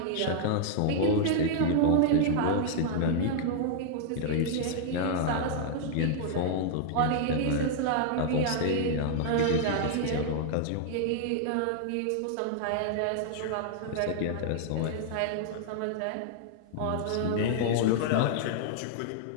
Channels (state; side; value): different; both; correlation -0.01